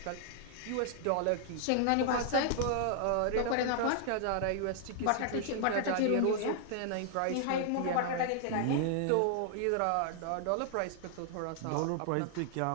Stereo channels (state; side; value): different; both; correlation -0.01